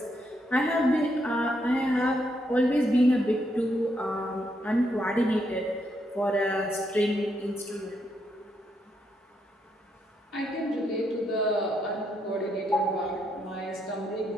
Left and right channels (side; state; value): both; normal; correlation 0.78